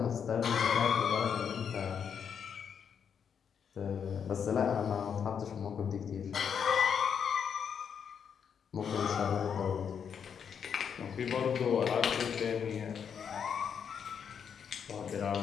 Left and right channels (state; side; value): quieter; right; 7.4 dB